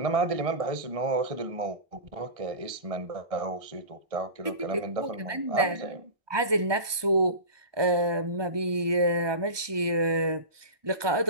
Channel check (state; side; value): late; left; 1.2 ms